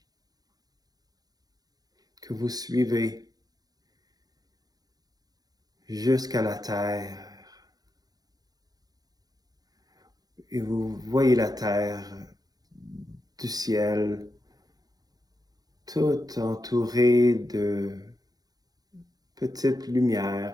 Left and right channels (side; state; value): left; late; 0.19 ms